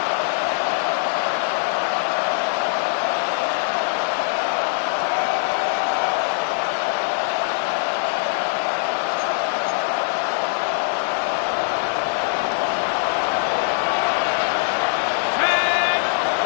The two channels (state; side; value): silent; right; digital silence